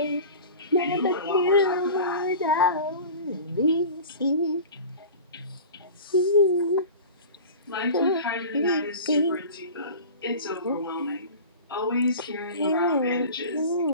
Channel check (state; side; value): inverted; both; correlation -0.36